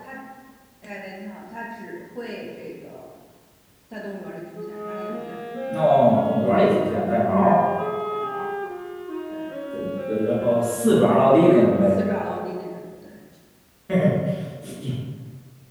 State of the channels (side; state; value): both; identical; correlation 1.00